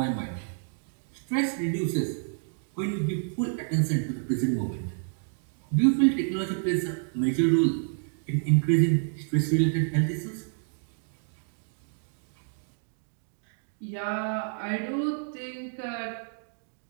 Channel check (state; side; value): silent; left; digital silence